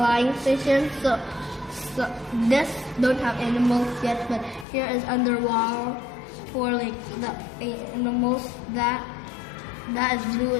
station. So this don't have animals yet, but here is underwater for like the animals. That is blue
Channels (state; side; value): drops out; right; at 4.7 s